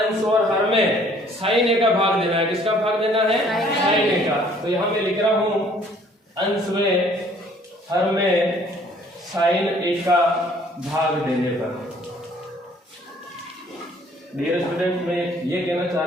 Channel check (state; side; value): normal; both; correlation 0.58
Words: और हर में साइन ए का भाग देना है। किसका भाग देना है, साइन ए का। तो यहाँ मैं लिख रहा हूं अंश में हर में साइन ए का भाग देने पर। डियर स्टूडेंट, मैं ये कहना चाह